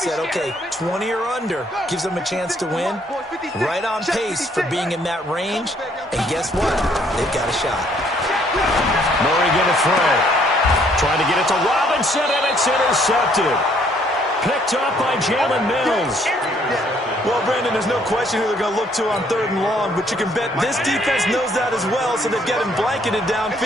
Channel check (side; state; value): both; normal; correlation 0.65